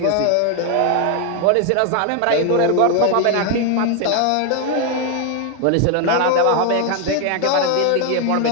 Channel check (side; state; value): both; different; correlation 0.00